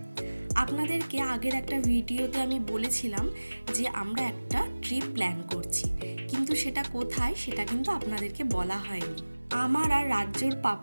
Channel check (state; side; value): inverted; both; correlation -1.00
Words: আপনাদেরকে আগের একটা ভিডিওতে আমি বলেছিলাম যে আমরা একটা ট্রিপ প্ল্যান করছি, কিন্তু সেটা কোথায় সেটা কিন্তু আপনাদেরকে বলা হয়নি। আমার আর রাজ্যর